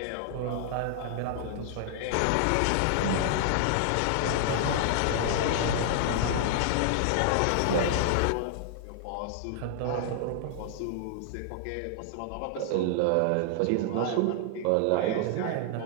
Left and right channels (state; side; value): different; both; correlation -0.01